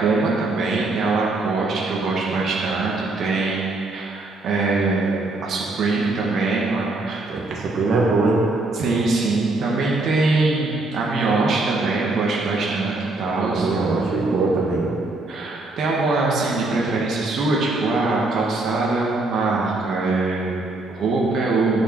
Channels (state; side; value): quieter; left; 3.0 dB